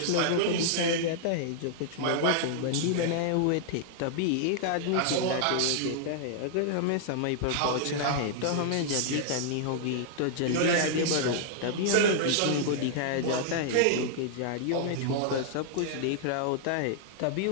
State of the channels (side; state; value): both; different; correlation -0.01